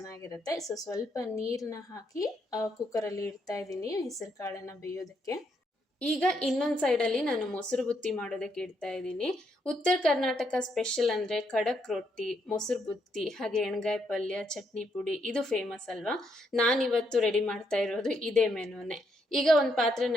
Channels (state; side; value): normal; both; correlation 0.76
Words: ಸೊ ಸ್ವಲ್ಪ ನೀರನ್ನ ಹಾಕಿ ಕುಕ್ಕರಲ್ಲಿ ಇಡ್ತಾ ಇದ್ದೀನಿ ಹೆಸರು ಕಾಳನ್ನ ಬೇಯೋದಕ್ಕೆ. ಈಗ ಇನ್ನೊಂದು ಸೈಡಲ್ಲಿ ನಾನು ಮೊಸರು ಬುತ್ತಿ ಮಾಡೋದಕ್ಕೆ ಇಡ್ತಾ ಇದ್ದೀನಿ. ಉತ್ತರ ಕರ್ನಾಟಕ ಸ್ಪೆಷಲ್ ಅಂದರೆ ಖಡಕ್ ರೊಟ್ಟಿ, ಮೊಸರು ಬುತ್ತಿ, ಹಾಗೆ ಎಣ್ಗಾಯಿ ಪಲ್ಯ, ಚಟ್ನಿ ಪುಡಿ ಇದು ಫೇಮಸ್ ಅಲ್ವಾ. ನಾನಿವತ್ತು ರೆಡಿ ಮಾಡ್ತಾ ಇರೋದು ಇದೇ ಮೆನುನೇ. ಈಗ ಒಂದು